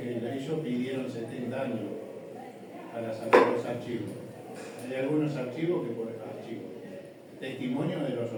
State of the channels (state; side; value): identical; both; correlation 1.00